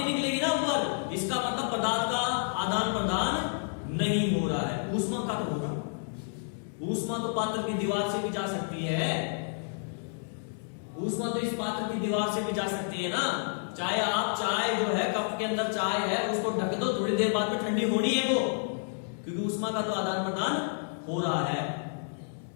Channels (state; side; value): silent; right; digital silence